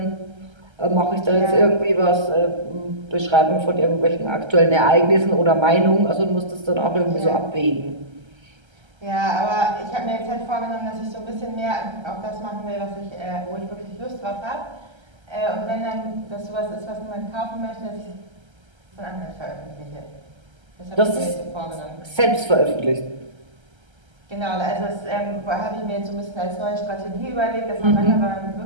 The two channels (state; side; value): late; left; 1.3 ms